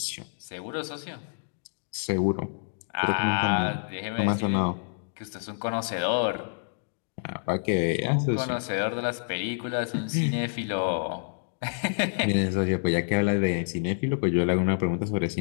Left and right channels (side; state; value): right; silent; digital silence